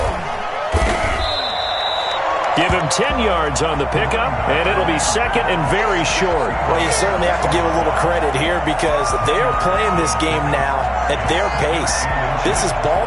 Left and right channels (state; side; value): identical; both; correlation 1.00